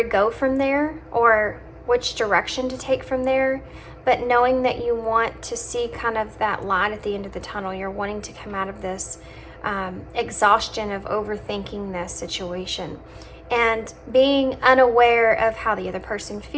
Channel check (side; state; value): both; identical; correlation 1.00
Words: go from there, or which direction to take from there. But knowing that you want to see kind of that light at the end of the tunnel. You're wanting to come out of this exhaustion of overthinking this situation, and being unaware of how the other person